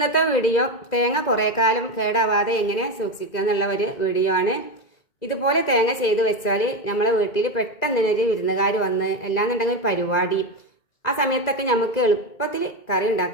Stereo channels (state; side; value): late; right; 2.0 ms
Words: വീഡിയോ തേങ്ങ കുറേ കാലം കേടാവാതെ എങ്ങനെ സൂക്ഷിക്കുക എന്നുള്ള ഒരു വീഡിയോ ആണ്. ഇതുപോലെ തേങ്ങ ചെയ്ത് വെച്ചാൽ നമ്മളെ വീട്ടിൽ പെട്ടെന്ന് ഒരു വിരുന്നുകാർ വന്ന് എല്ലാന്നുണ്ടെങ്കിൽ ഒരു പരിപാടി ആ സമയത്തൊക്കെ നമുക്ക് എളുപ്പത്തിൽ കറി